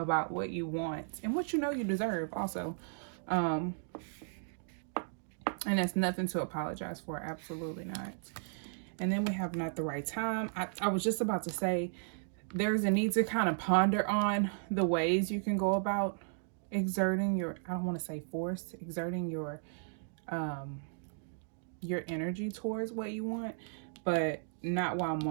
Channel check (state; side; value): silent; left; digital silence